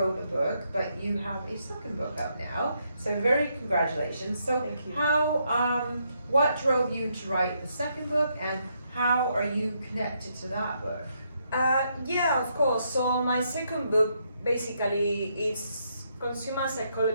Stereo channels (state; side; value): inverted; both; correlation -0.76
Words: a book, but you have a second book out now. So very congratulations. So Thank you. what drove you to write the second book, and how are you connected to that book? Yeah, of course. So my second book basically is consumer